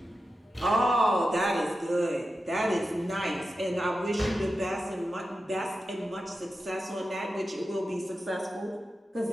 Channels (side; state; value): both; normal; correlation 0.91